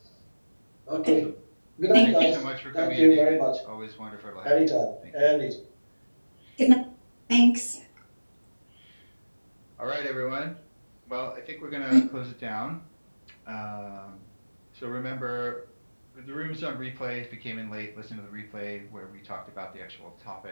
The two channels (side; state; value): both; inverted; correlation -1.00